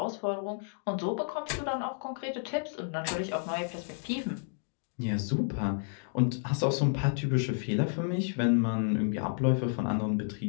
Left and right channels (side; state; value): right; silent; digital silence